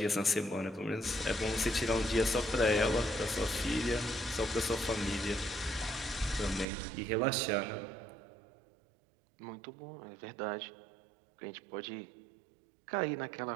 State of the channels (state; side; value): drops out; left; at 6.7 s